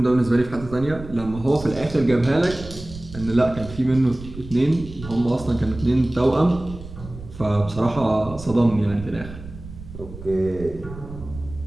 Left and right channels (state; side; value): noise; right; rumble, 14 dB below the sound